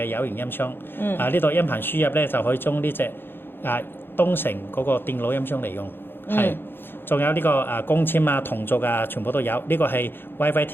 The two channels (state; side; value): late; right; 0.10 ms